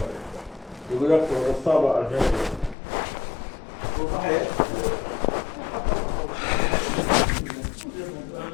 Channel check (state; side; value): drops out; right; at 2.8 s